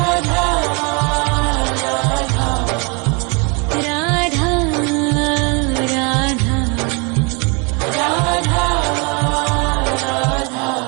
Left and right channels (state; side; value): quieter; left; 31.2 dB